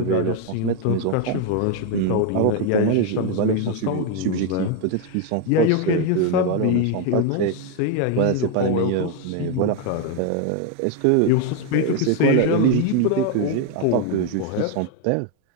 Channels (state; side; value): different; both; correlation 0.01